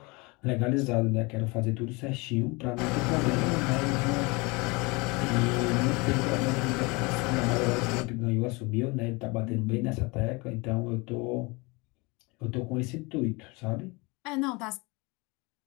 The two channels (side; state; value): right; quieter; 26.6 dB